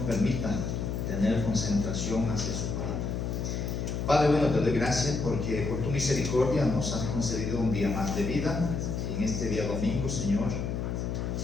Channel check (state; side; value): noise; left; hum, 2 dB below the sound